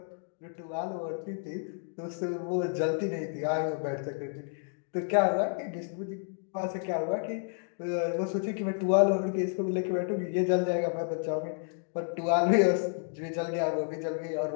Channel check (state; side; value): silent; right; 57 dB below the other